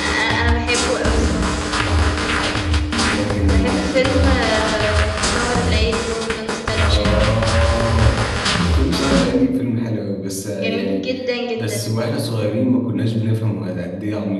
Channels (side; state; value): both; identical; correlation 1.00